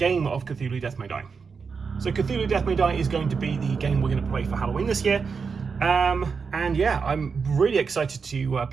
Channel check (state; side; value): quieter; left; 5.4 dB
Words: of Cthulhu Death May Die. So Cthulhu Death May Die is going to be the game we're going to play for Halloween this year. And yeah, I'm really excited to